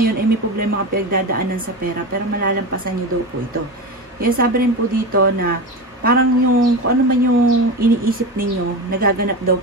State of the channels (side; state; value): both; normal; correlation 0.23